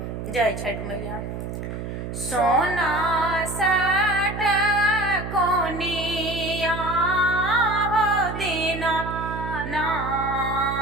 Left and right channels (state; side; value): noise; right; hum, 6 dB below the sound